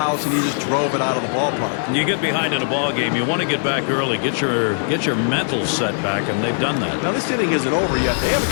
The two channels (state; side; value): silent; right; 57 dB below the other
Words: and he just drove it out of the ballpark. You get behind in a ball game, you want to get back early, get your mental set back, and they've done that. Now this inning isn't over yet. They have